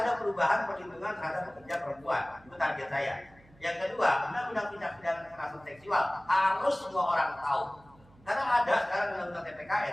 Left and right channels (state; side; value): noise; right; hum, 27 dB below the sound